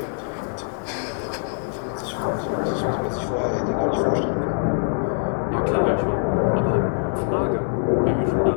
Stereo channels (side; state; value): right; silent; 61 dB below the other